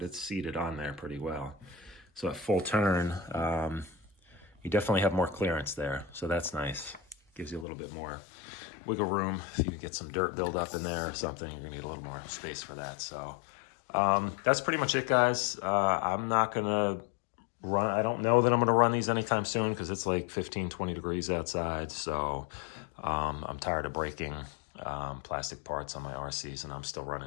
it's seated on there pretty well. So at full turn, you definitely have more clearance there. So that's nice. Gives you a little bit more wiggle room. If you get some dirt buildup in there or something, you're gonna need a little more space for that. So that's pretty much it, guys. I'm not gonna run, I don't know that I'm gonna run these anytime soon because it's like 15, 20 degrees outside. So I'm tired of breaking plastic parts on my RCs, and I'm still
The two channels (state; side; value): drops out; right; at 7.7 s